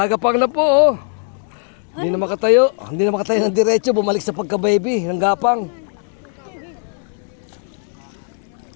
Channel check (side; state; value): right; silent; 57 dB below the other